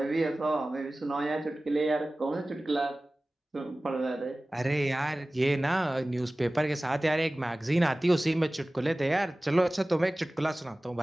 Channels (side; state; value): both; normal; correlation 0.97